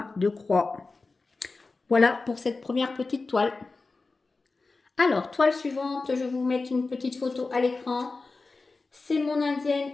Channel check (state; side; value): quieter; right; 3.8 dB